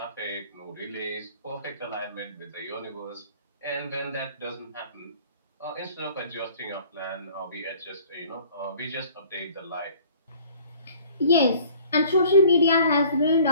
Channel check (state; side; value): inverted; both; correlation -0.53